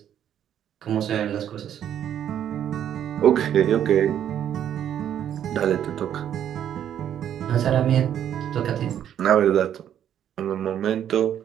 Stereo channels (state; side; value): quieter; left; 10.0 dB